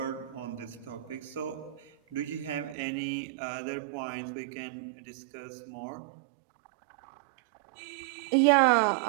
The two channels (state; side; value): drops out; left; at 2.8 s